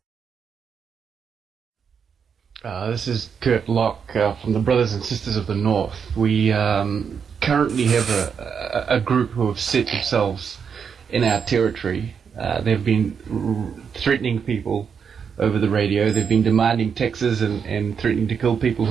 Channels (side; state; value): left; quieter; 6.7 dB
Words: This is Kurt Locke from the Brothers and Sisters of the North. We currently have a group who have set themselves in our territory. They've been threatening people over the radio. They've been demanding taxes and threatening to kill people